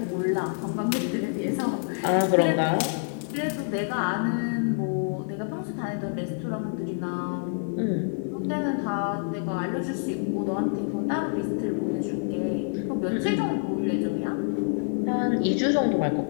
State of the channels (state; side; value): silent; right; 56 dB below the other